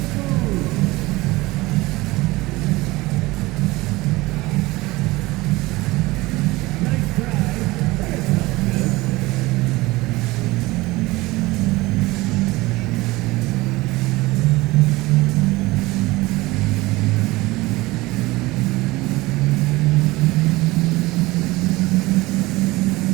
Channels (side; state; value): left; quieter; 20.5 dB